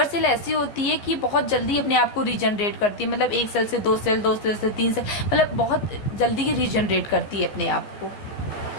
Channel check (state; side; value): late; right; 14 ms